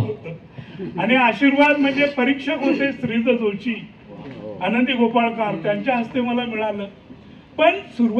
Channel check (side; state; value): both; identical; correlation 1.00